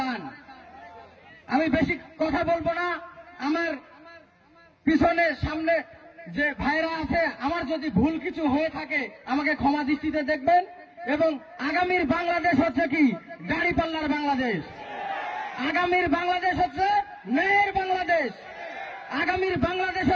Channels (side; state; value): both; identical; correlation 1.00